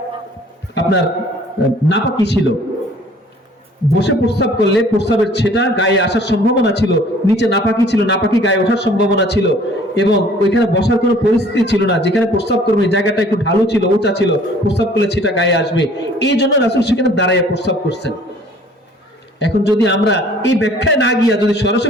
আপনার নাপাকি ছিল। বসে প্রস্রাব করলে প্রস্রাবের ছেটা গায়ে আসার সম্ভাবনা ছিল, নিচে নাপাকি ছিল, নাপাকি গায়ে ওঠার সম্ভাবনা ছিল, এবং ওইখানে বসার কোনো পরিস্থিতি ছিল না। যেখানে প্রস্রাব করবে জায়গাটা একটু ঢালু ছিল, উঁচা ছিল, প্রস্রাব করলে ছেটা গায়ে আসবে, এই জন্য রাসূল সেখানে দাঁড়ায় প্রস্রাব করছেন। এখন যদি আমরা এই ব্যাখ্যায় না গিয়া যদি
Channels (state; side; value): normal; both; correlation 0.54